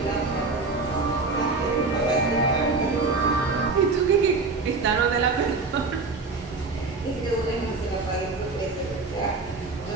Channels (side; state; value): left; quieter; 4.0 dB